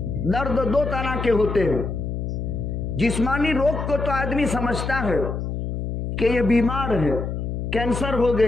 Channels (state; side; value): noise; left; hum, 4 dB below the sound